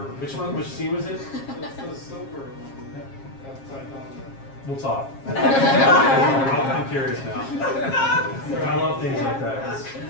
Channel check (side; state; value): right; late; 7.4 ms